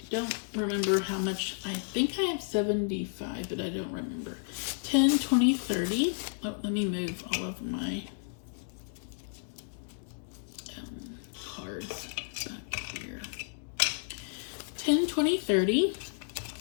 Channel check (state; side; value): silent; right; digital silence